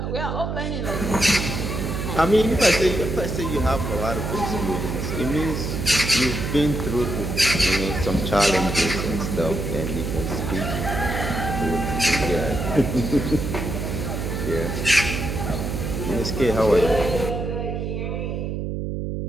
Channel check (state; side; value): noise; right; hum, 3 dB below the sound